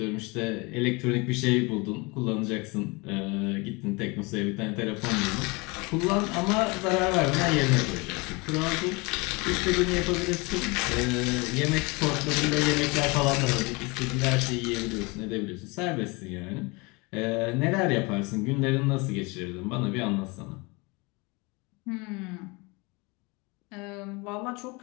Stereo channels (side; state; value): right; quieter; 27.1 dB